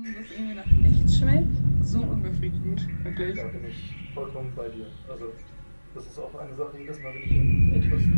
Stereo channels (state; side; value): inverted; both; correlation -1.00